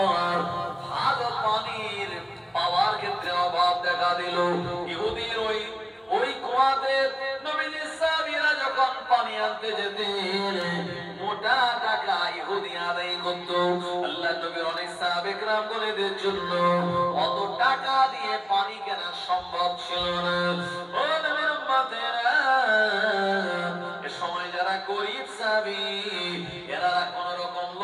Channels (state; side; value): identical; both; correlation 1.00